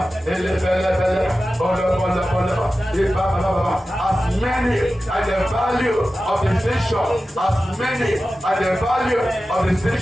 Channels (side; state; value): both; normal; correlation 0.94